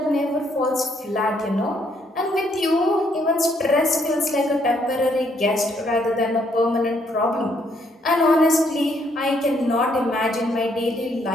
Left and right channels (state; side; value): normal; both; correlation 0.70